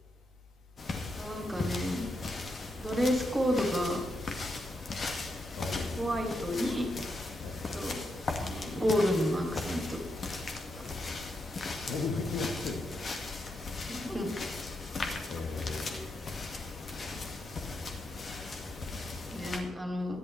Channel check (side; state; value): both; normal; correlation 0.83